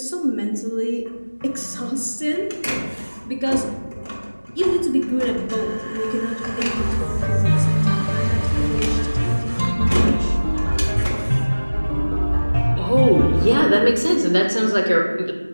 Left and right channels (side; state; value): both; inverted; correlation -1.00